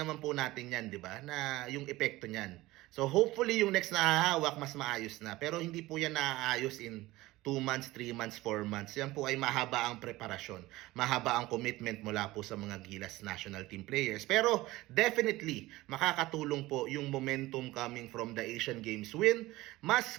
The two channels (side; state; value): left; quieter; 18.5 dB